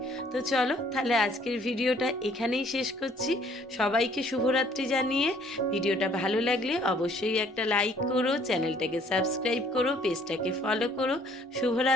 তো চলো তাহলে আজকের ভিডিওটা এখানেই শেষ করছি। সবাইকে শুভরাত্রি জানিয়ে, ভিডিওটা ভালো লাগলে অবশ্যই একটা লাইক করো, চ্যানেলটাকে সাবস্ক্রাইব করো, পেজটাকে ফলো করো।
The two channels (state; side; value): normal; both; correlation 0.60